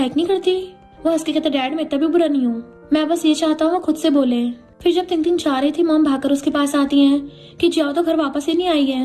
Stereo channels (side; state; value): both; identical; correlation 1.00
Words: नहीं करती। वो हंस के कहता डैड मैं इतना भी बुरा नहीं हूँ, मैं बस ये चाहता हूँ वो खुद से बोले। फिर जब टिंग जा रही थी मॉम भागकर उसके पास आती है कि जियाओ तो घर वापस ही नहीं आई